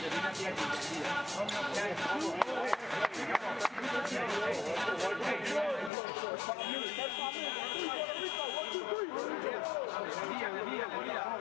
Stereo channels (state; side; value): drops out; right; at 5.9 s